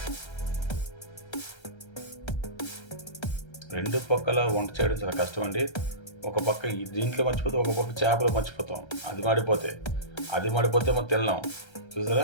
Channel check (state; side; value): late; right; 1.3 ms